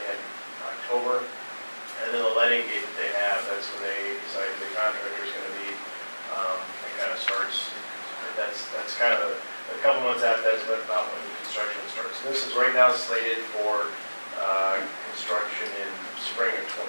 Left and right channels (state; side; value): inverted; both; correlation -1.00